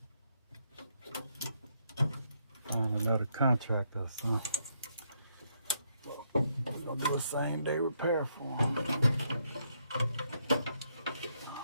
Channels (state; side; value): inverted; both; correlation -0.76